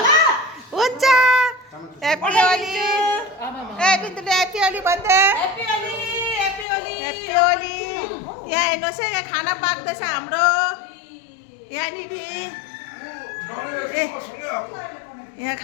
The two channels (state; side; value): drops out; right; at 6.7 s